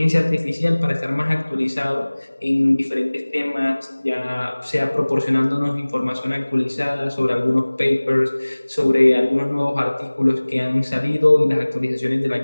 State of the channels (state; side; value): inverted; both; correlation -1.00